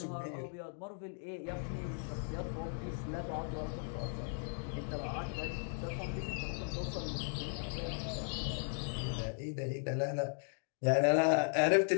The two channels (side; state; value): right; silent; 53 dB below the other